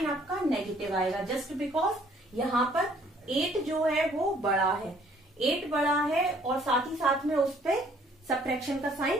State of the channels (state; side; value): normal; both; correlation 0.61